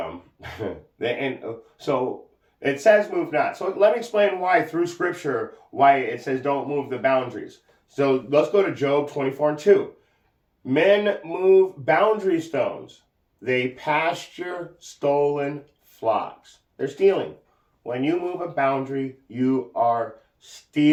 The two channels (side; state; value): both; identical; correlation 1.00